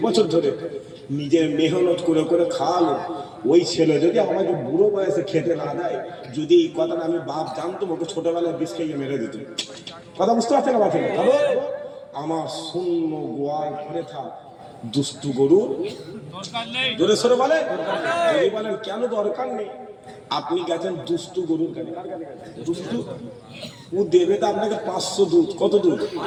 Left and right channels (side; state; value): both; identical; correlation 1.00